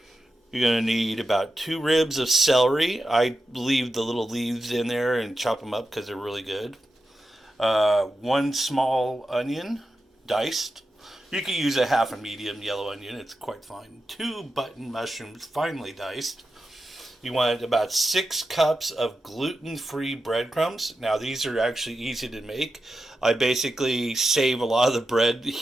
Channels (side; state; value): both; normal; correlation 0.90